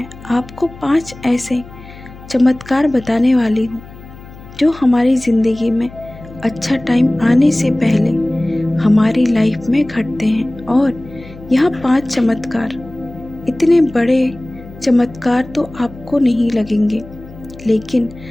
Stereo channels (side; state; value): left; noise; hum, 18 dB below the sound